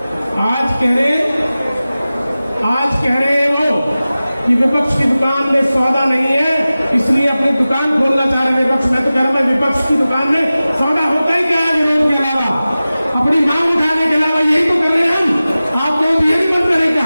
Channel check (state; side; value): inverted; both; correlation -0.96